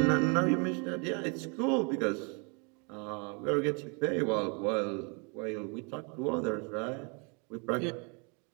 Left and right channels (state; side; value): quieter; left; 34.6 dB